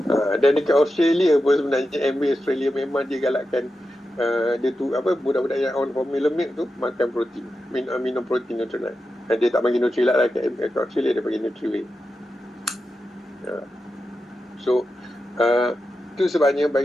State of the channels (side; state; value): both; normal; correlation 0.90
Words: Dan dekat Australia pun sebenarnya MBA Australia memang dia galakkan dia tu budak-budak yang on formula milk tu makan protein, minum protein Nutrilite. Dia tak bagi Nutrilite lah kat Australia, dia bagi Nutrilite. So itu sebabnya